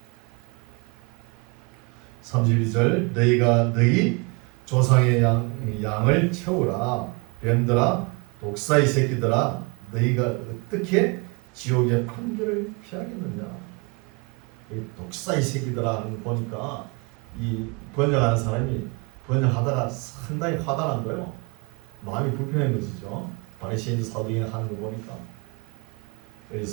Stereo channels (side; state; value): left; quieter; 30.5 dB